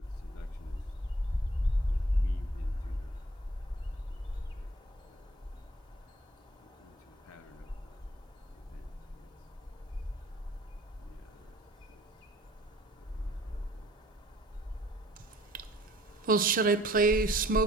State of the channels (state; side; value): normal; both; correlation 0.56